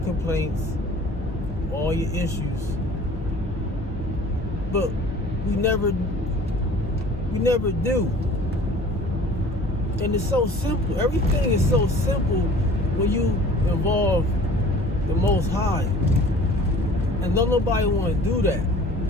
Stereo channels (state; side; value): normal; both; correlation 0.48